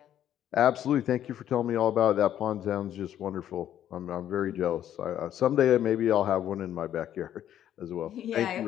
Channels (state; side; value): quieter; right; 11.0 dB